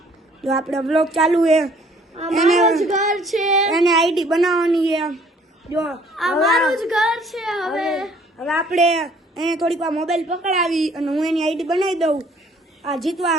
જો આપણે વ્લોગ ચાલુ હે, અમારું જ ઘર છે, એને આઈડી બનાવવાની છે. જો અમારું જ ઘર છે. હવે આપણે એને થોડીક વાર મોબાઈલ પકડાવી અને હું એની આઈડી બનાવી દઉં. આ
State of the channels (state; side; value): normal; both; correlation 0.59